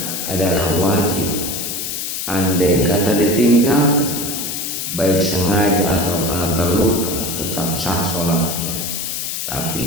adalah wajib. Andai kata ditinggalkan, baik sengaja atau karena terlupa, tetap sah sholatnya, tapi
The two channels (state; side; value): noise; left; hiss, 4 dB below the sound